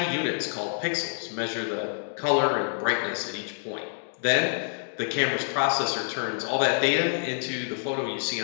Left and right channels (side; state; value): right; silent; digital silence